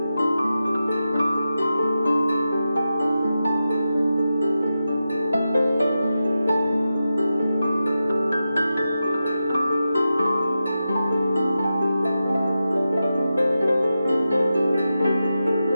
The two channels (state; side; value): inverted; both; correlation -0.90